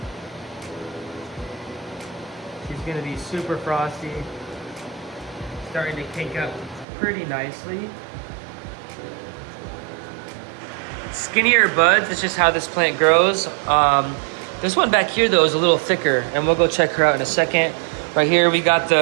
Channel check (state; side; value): drops out; left; at 6.9 s